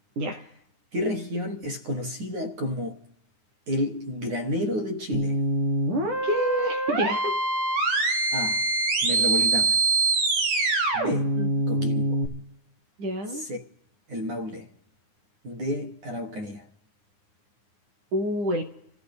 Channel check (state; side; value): late; left; 9.7 ms